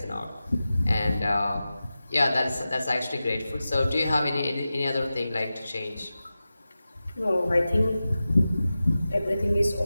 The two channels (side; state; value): both; inverted; correlation -0.94